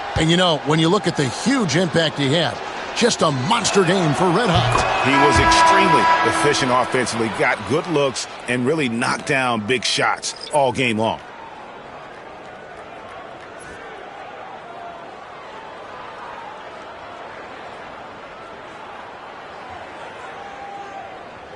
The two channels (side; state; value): both; identical; correlation 1.00